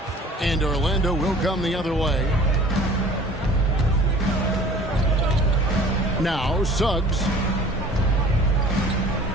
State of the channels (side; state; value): both; normal; correlation 0.48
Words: And Orlando will come the other way. Now Suggs.